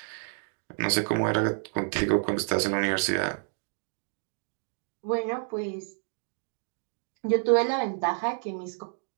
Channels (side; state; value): left; silent; digital silence